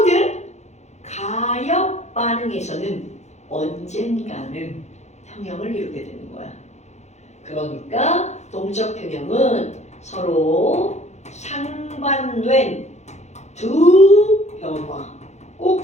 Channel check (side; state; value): right; late; 0.33 ms